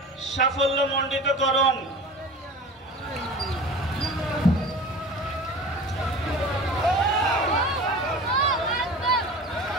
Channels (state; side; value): normal; both; correlation 0.37